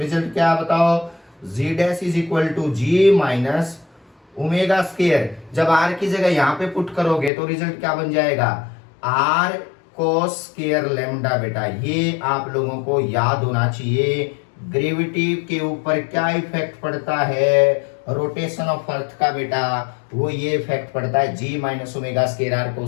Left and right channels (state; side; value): drops out; right; at 7.3 s